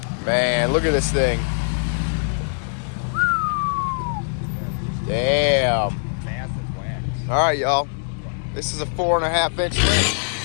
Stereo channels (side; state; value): right; silent; 64 dB below the other